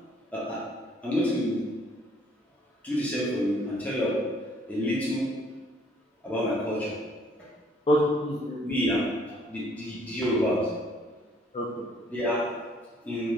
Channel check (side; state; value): both; normal; correlation 0.62